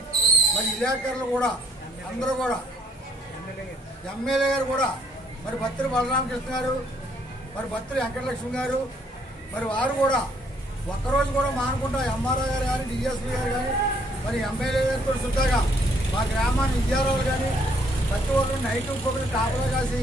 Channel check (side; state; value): both; normal; correlation 0.65